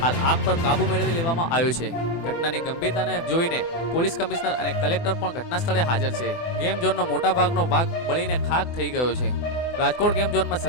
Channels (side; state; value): right; late; 24 ms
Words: હાલ આગ પર કાબુ મેળવી લેવામાં આવ્યો છે। ઘટનાની ગંભીરતાને જોઈને પોલીસ કમિશનર અને કલેક્ટર પણ ઘટના સ્થળે હાજર છે। ગેમ ઝોનનો મોટા ભાગનો ભાગ બળીને ખાક થઈ ગયો છે। રાજકોટ ગેમ ઝોનમાં